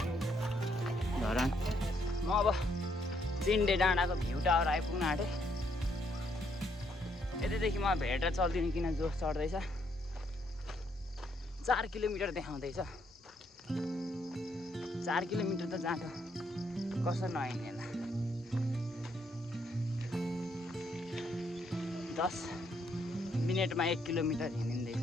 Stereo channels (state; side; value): normal; both; correlation 0.73